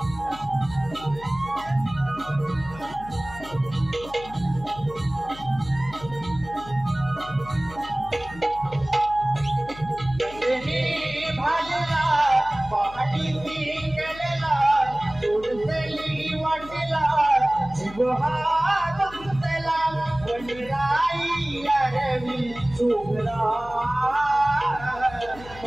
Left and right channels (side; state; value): left; noise; hum, 17 dB below the sound